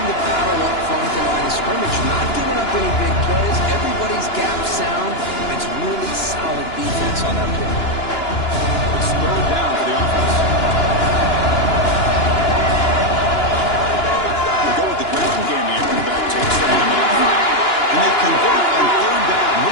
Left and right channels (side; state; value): right; late; 2.9 ms